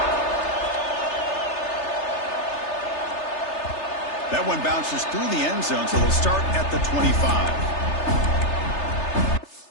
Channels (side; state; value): right; late; 3.3 ms